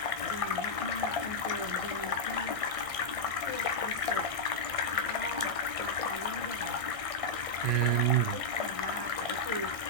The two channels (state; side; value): late; left; 1.6 ms